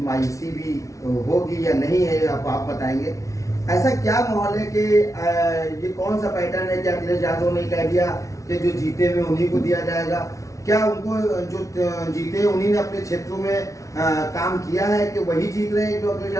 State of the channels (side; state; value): right; late; 0.15 ms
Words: मायूसी भी होगी या नहीं है, आप बताएंगे। ऐसा क्या माहौल है कि ये कौन सा पैटर्न है कि अखिलेश यादव ने कह दिया कि जो जीते हुए उन्हीं को दिया जाएगा? क्या उनको जो जीते उन्हीं ने अपने क्षेत्रों में काम किया है कि वही जीत रहे हैं जो अखिलेश